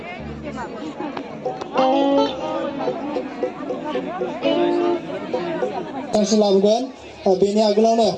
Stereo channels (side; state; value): both; identical; correlation 1.00